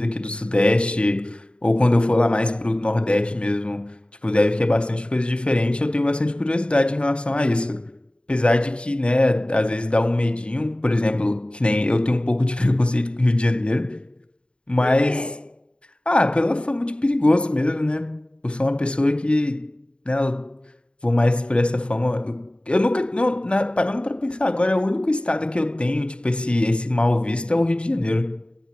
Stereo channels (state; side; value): late; right; 0.054 ms